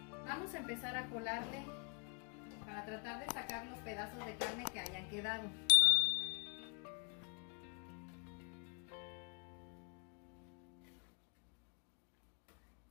Vamos a empezar a colarle para tratar de sacar los pedazos de carne que hayan quedado.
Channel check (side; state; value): right; quieter; 35.6 dB